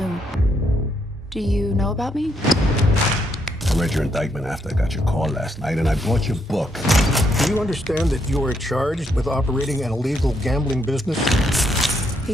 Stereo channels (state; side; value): normal; both; correlation 0.76